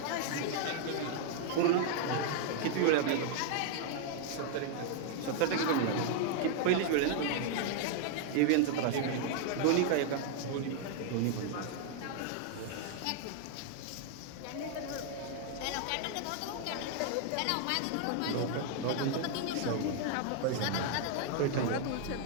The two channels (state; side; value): different; both; correlation 0.00